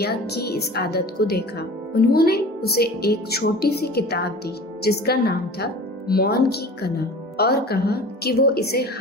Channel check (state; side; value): normal; both; correlation 0.40